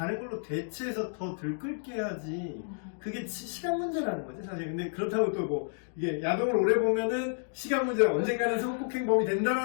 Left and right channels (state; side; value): silent; right; digital silence